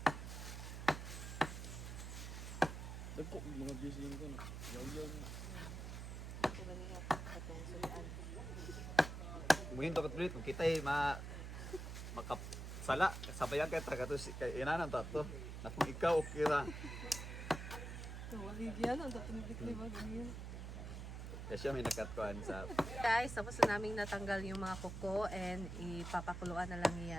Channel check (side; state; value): right; noise; hum, 7 dB below the sound